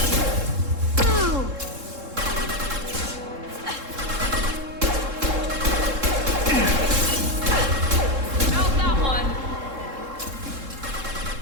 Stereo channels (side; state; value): left; late; 3.7 ms